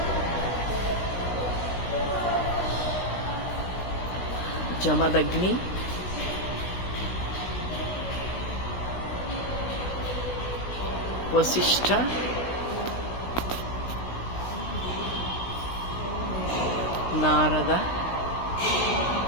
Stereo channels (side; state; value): right; late; 16 ms